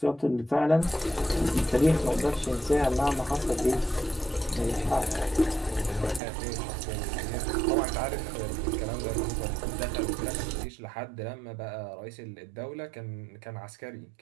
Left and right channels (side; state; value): left; drops out; at 6.2 s